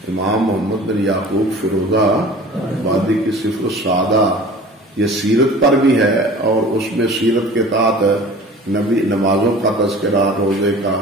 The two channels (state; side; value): normal; both; correlation 0.43